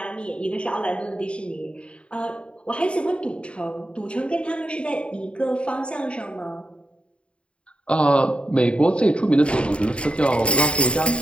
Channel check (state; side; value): late; right; 0.057 ms